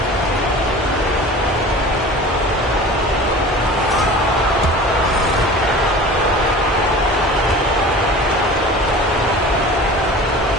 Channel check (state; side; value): normal; both; correlation 0.39